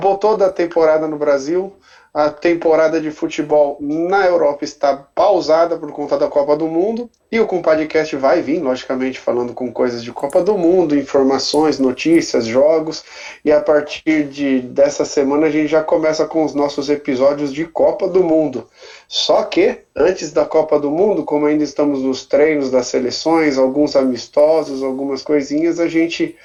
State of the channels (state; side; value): identical; both; correlation 1.00